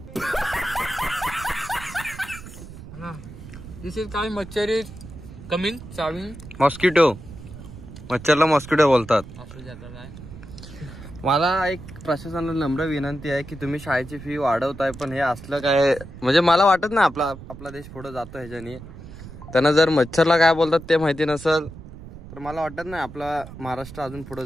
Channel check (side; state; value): right; noise; rumble, 15 dB below the sound